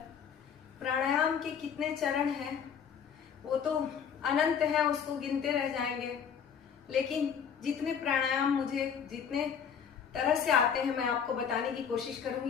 प्राणायाम के कितने चरण हैं वो तो अनंत है, उसको गिनते रह जाएंगे। लेकिन जितने प्राणायाम मुझे जितने तरह से आते हैं मैं आपको बताने की कोशिश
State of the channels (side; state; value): right; quieter; 7.4 dB